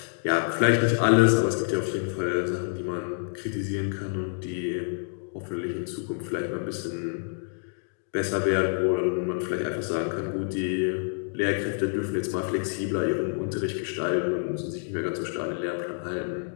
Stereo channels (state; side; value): silent; right; digital silence